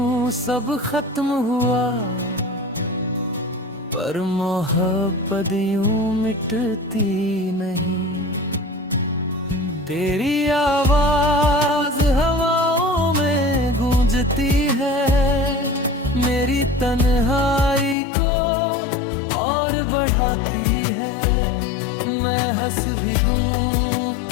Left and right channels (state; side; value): drops out; right; at 17.9 s